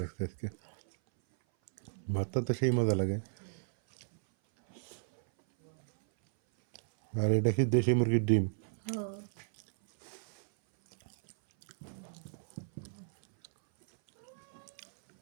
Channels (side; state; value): left; silent; 55 dB below the other